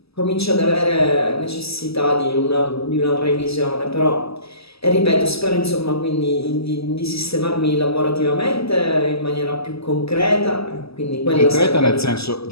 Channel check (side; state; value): right; late; 0.78 ms